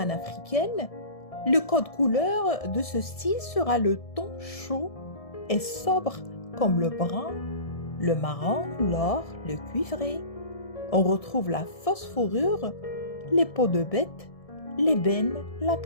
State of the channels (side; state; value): right; late; 1.7 ms